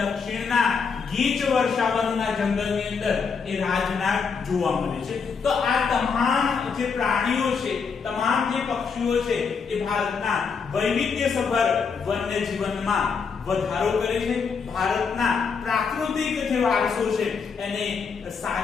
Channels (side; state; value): right; quieter; 5.6 dB